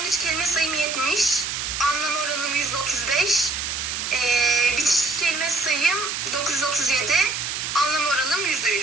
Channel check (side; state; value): right; noise; hiss, 3 dB below the sound